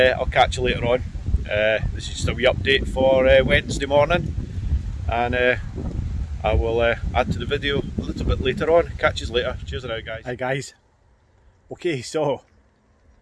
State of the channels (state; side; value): identical; both; correlation 1.00